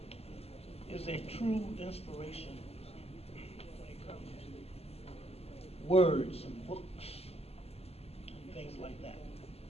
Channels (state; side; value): late; right; 0.29 ms